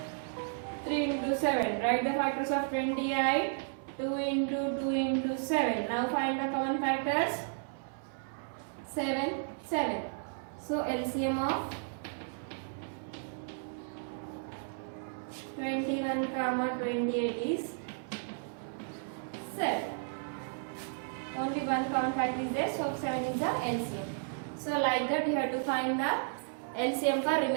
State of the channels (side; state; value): left; silent; 55 dB below the other